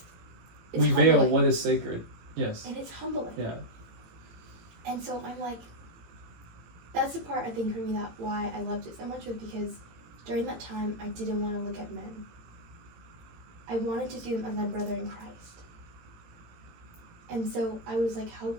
it's We veil humbling. what is sacred. Yes. And it's humbling. Yeah. And so I'm like, that's the part I think for me that why I loved it so much was because during that time I didn't want to look at men. I wanted to see them as my brother in Christ. And so I was like, how,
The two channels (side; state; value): left; late; 18 ms